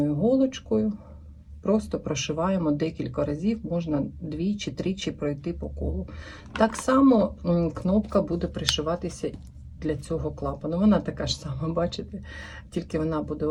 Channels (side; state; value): both; identical; correlation 1.00